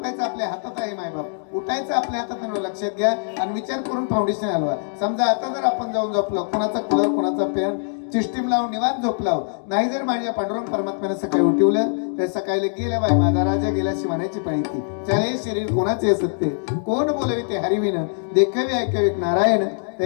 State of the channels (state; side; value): silent; right; digital silence